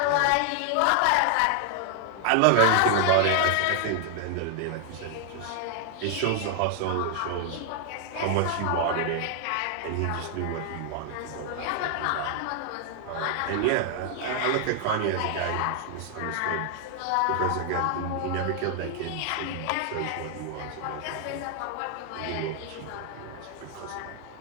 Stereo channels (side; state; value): both; different; correlation 0.00